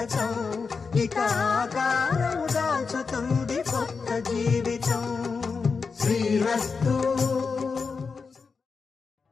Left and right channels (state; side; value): quieter; right; 5.0 dB